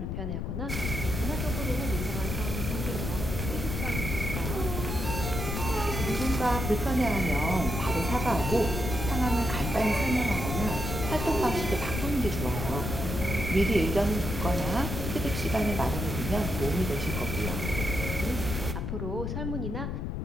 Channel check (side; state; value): left; noise; rumble, 3 dB below the sound